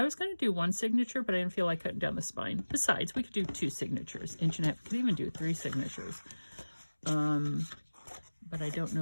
was going to do 1 signature, but I didn't feel like cutting down the spine. Besides, we could do 2 signatures, 1.5 inches. We could even do 3 signatures. But I don't know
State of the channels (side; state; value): both; inverted; correlation -1.00